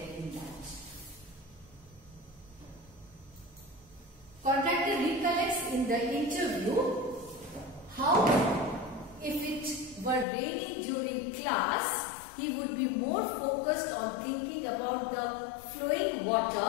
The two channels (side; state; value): right; drops out; at 10.2 s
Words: in that. Contractor recollects in the interview how if it were raining during class, he would be more focused on thinking about the flowing water